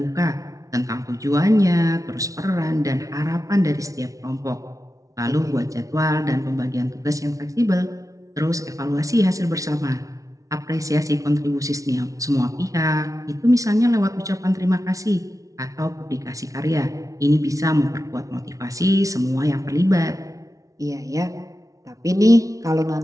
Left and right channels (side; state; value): left; late; 0.17 ms